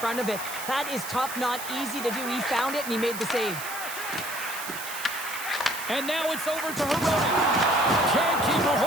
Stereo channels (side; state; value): right; noise; hiss, 9 dB below the sound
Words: of it. That is tough, not easy to do. He found it, and he made the save. And now it's over to Hirota. Can't keep a